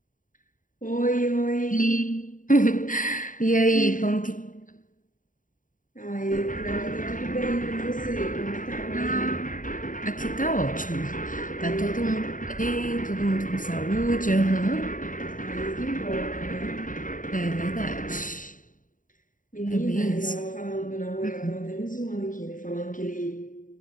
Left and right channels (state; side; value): late; right; 0.38 ms